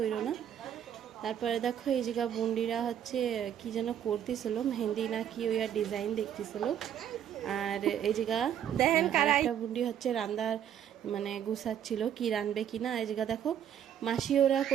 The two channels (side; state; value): left; quieter; 9.7 dB